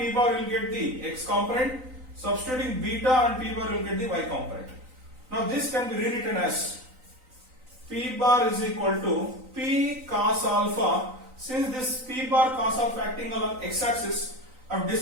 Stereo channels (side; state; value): left; late; 3.9 ms